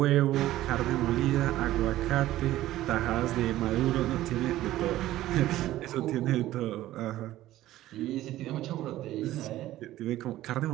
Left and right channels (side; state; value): left; quieter; 14.8 dB